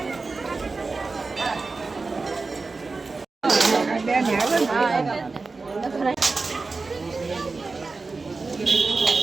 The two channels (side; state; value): left; quieter; 3.9 dB